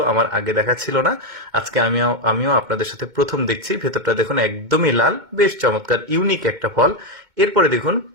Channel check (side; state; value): left; late; 2.2 ms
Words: আমার আগে দেখা ছিল না, আজকে আমিও আপনাদের সাথে প্রথম দেখছি। ভেতরটা দেখুন একদমই লাল, বেশ চমৎকার, ইউনিক একটা ফল। এরপরে দেখুন,